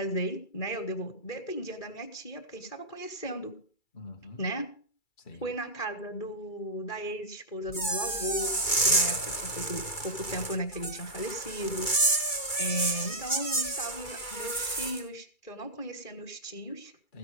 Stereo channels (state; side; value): late; right; 2.3 ms